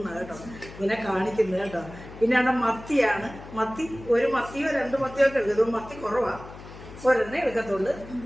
കേട്ടോ, ഇങ്ങനെ കാണിക്കുന്നത് കേട്ടോ. പിന്നെ അവിടെ മത്തിയാണ്. മത്തി 1 മത്തിയോ 2 മത്തിയോ ഒക്കെ എടുക്കും. മത്തി കുറവാണ്, ഒരെണ്ണേ എടുക്കത്തുള്ളൂ.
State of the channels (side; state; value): left; noise; hum, 16 dB below the sound